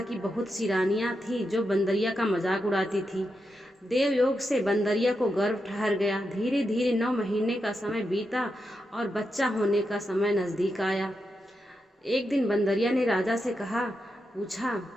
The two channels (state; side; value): normal; both; correlation 0.86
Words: की बहुत सी रानियां थी जो बंदरिया का मजाक उड़ाती थी। देवयोग से बंदरिया को गर्भ ठहर गया। धीरे धीरे 9 महीने का समय बीता और बच्चा होने का समय नजदीक आया। एक दिन बंदरिया ने राजा से पूछा,